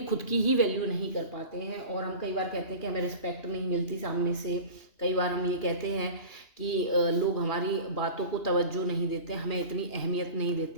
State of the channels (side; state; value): right; late; 2.8 ms